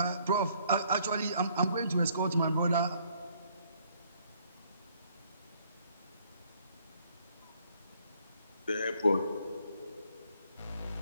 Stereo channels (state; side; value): inverted; both; correlation -0.65